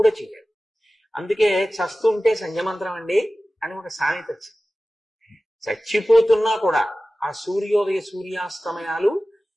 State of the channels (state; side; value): normal; both; correlation 0.96